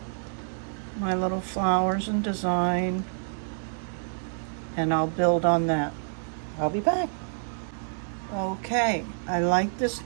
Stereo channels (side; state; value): left; silent; digital silence